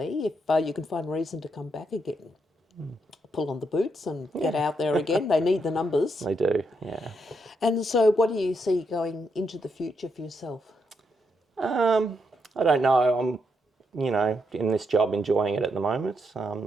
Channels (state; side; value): normal; both; correlation 0.79